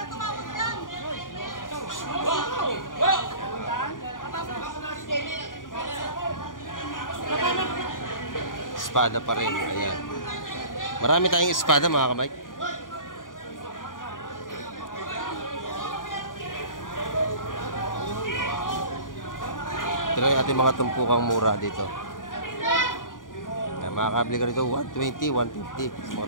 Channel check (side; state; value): right; late; 0.89 ms